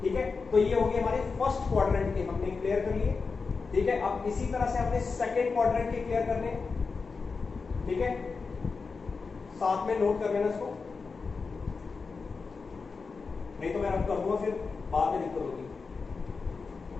ठीक है। तो ये हो गए हमारे फर्स्ट क्वाड्रेंट के, हमने क्लियर कर लिए, ठीक है। अब इसी तरह से अपने सेकंड क्वाड्रेंट के क्लियर करने, ठीक है, साथ में नोट कर लेना इसको, नहीं तो मैं रब कर दूंगा फिर बाद में दिक्कत होगी।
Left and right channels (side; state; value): right; quieter; 4.7 dB